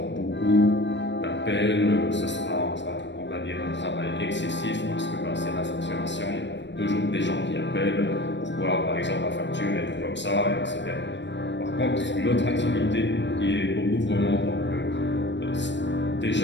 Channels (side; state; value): right; late; 0.52 ms